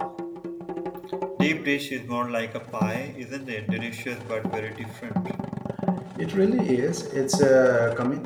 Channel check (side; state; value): both; identical; correlation 1.00